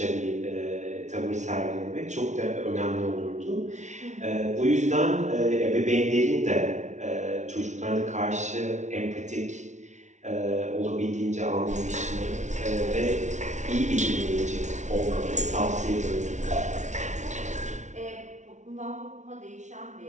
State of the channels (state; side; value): late; left; 0.34 ms